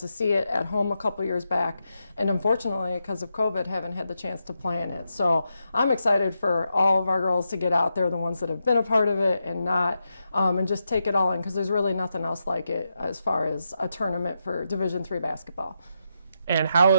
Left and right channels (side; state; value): both; inverted; correlation -0.85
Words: see it at home a couple years back, and unfortunately, because of COVID, haven't had the chance to play in it. So I'm excited for all of our girls to get out there, the ones that have been a part of it and not, and just take it all in, because there's really nothing else like it as far as a tournament for Division III basketball. And how